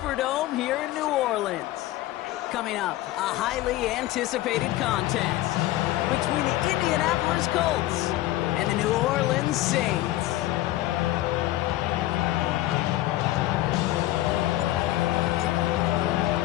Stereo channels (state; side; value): quieter; right; 15.6 dB